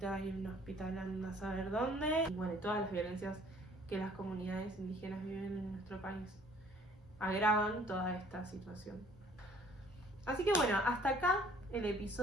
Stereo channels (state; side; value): normal; both; correlation 0.57